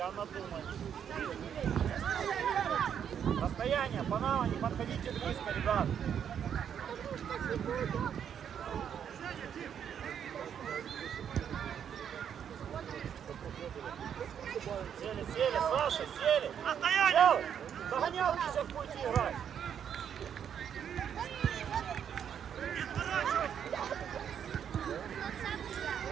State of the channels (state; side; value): quieter; left; 8.5 dB